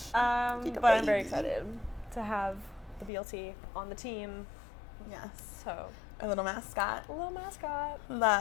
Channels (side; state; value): right; drops out; at 3.1 s